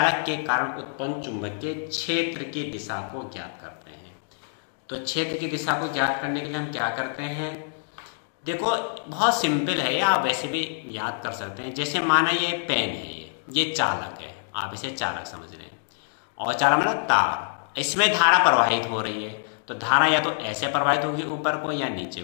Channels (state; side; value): silent; right; digital silence